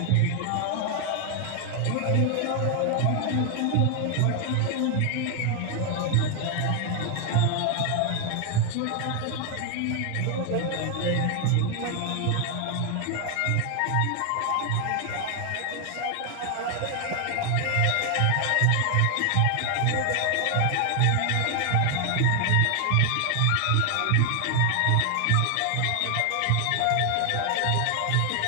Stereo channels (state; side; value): different; both; correlation 0.00